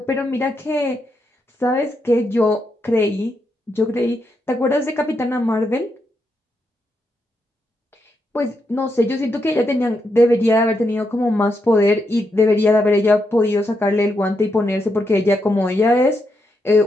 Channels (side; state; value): both; normal; correlation 0.82